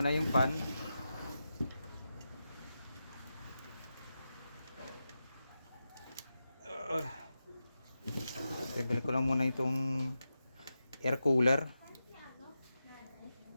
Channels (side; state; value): both; inverted; correlation -0.90